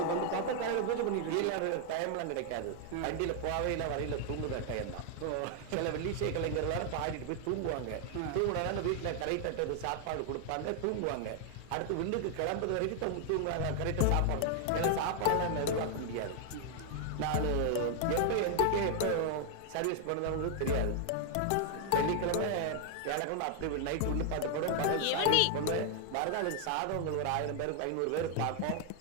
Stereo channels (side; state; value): both; different; correlation 0.00